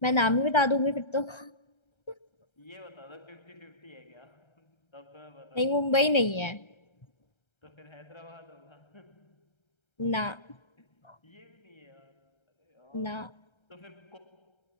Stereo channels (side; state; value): right; late; 1.3 ms